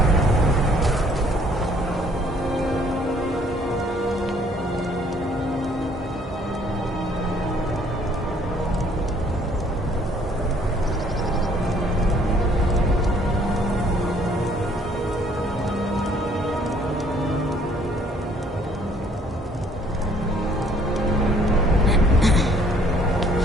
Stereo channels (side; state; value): both; normal; correlation 0.61